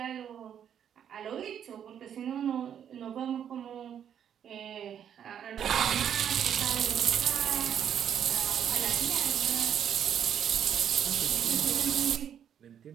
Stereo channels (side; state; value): left; quieter; 9.0 dB